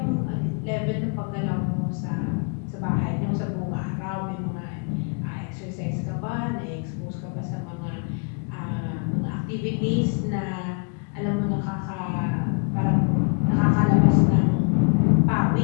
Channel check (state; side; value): quieter; right; 35.3 dB